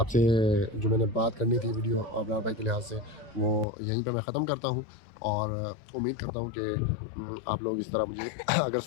जो मैंने बात करनी थी वीडियो अब्रार भाई के लिहाज से, वो यहीं पे मैं ख़त्म करता हूँ और उम्मीद करता हूँ कि आप लोग इस तरह मुझे अगर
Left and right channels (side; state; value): right; drops out; at 3.7 s